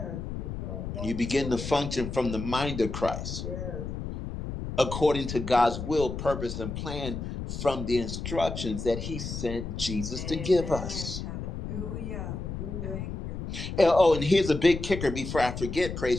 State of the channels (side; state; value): left; noise; rumble, 6 dB below the sound